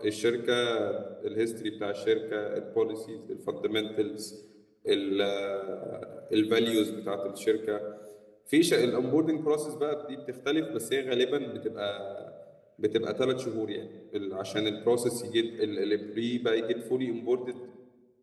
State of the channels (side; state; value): both; identical; correlation 1.00